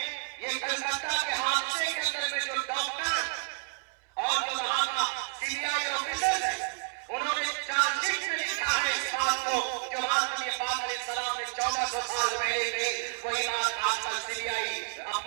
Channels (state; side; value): silent; left; 58 dB below the other